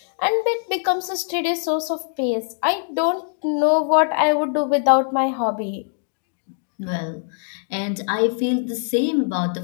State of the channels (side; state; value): right; silent; 64 dB below the other